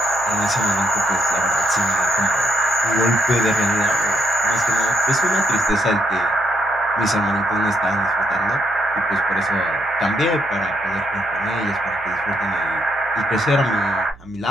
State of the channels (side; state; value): right; noise; hum, 23 dB below the sound